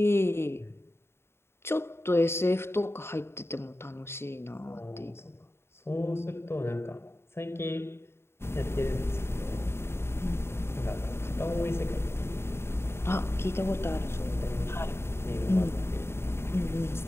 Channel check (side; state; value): right; late; 0.12 ms